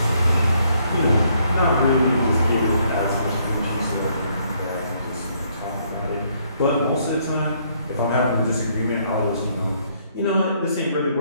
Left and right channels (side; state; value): both; inverted; correlation -0.69